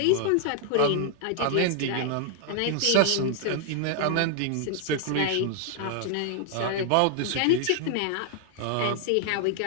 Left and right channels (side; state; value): both; different; correlation 0.00